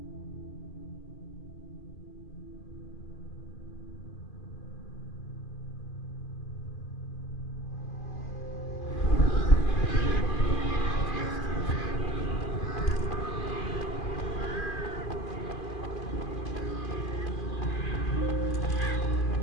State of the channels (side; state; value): right; late; 2.5 ms